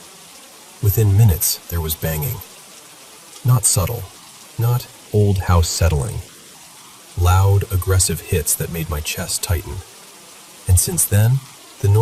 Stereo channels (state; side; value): identical; both; correlation 1.00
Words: Within minutes, there was banging. Not subtle, not old house settling. Loud, aggressive hits that made my chest tighten. And since then, the